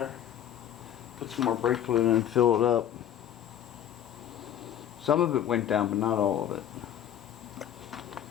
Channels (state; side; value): quieter; right; 10.4 dB